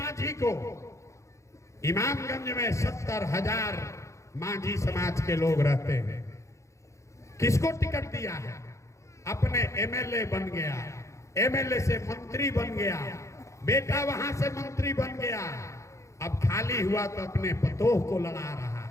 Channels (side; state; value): right; late; 0.15 ms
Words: को, इमामगंज में 70,000 मांझी समाज के लोग रहते हैं। किसको टिकट दिया है? अपने एमएलए बन गया, एमएलए से मंत्री बन गया, बेटा वहां से मंत्री बन गया। अब खाली हुआ तो अपने पतोह को लड़ा रहा